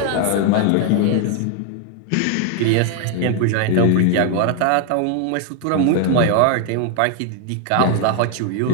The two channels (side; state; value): both; different; correlation 0.01